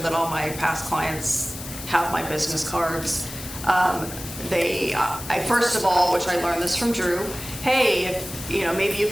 all my past clients have my business cards. I first of all, which I learned this from Drew, hey, if, maybe you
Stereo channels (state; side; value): noise; left; hiss, 11 dB below the sound